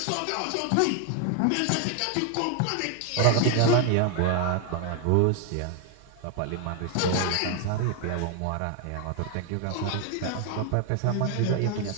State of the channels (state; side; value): different; both; correlation 0.01